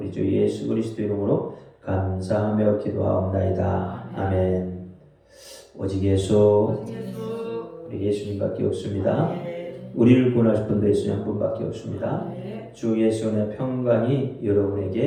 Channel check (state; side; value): identical; both; correlation 1.00